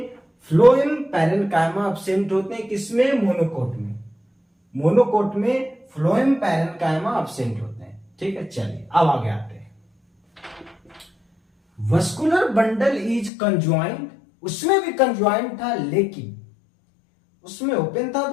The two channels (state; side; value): drops out; right; at 13.3 s